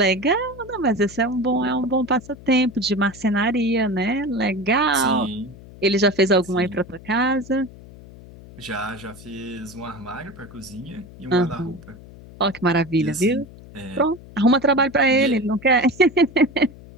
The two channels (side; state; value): left; noise; hum, 19 dB below the sound